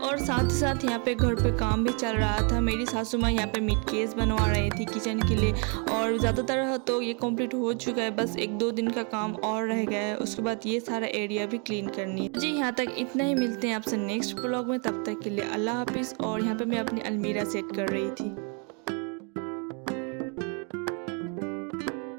और साथ ही साथ यहाँ पे घर पे काम भी चल रहा था। मेरी सासू माँ यहाँ पे मीट केस बनवा रही थी किचन के लिए, और ज़्यादातर तो ये कंप्लीट हो चुका है, बस 1-2 दिन का काम और रह गया है। उसके बाद ये सारा एरिया भी क्लीन करनी है। जी यहाँ तक इतना ही, मिलते हैं आपसे नेक्स्ट ब्लॉग में। तब तक के लिए अल्लाह हाफिज़। और यहाँ पे मैं अपनी अलमीरा सेट कर रही थी।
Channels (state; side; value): quieter; left; 37.0 dB